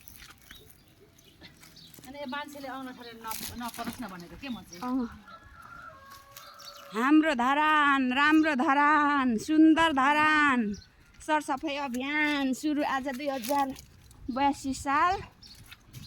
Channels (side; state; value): both; identical; correlation 1.00